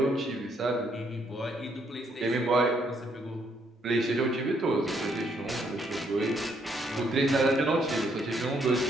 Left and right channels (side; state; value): both; normal; correlation 0.71